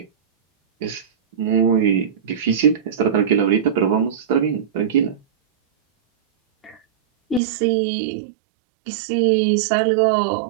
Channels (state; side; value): drops out; left; at 7.4 s